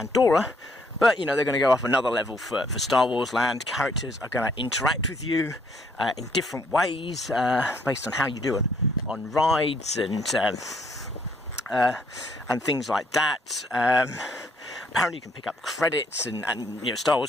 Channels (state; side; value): normal; both; correlation 0.67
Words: But, they're going to go up another level for Star Wars Land. Characters are going to interact with you in different ways based on how you do it on rides and things like that. Apparently you can pick up credits and Star